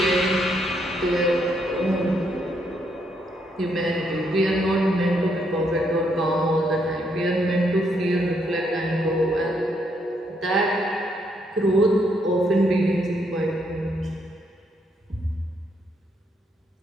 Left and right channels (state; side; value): normal; both; correlation 0.75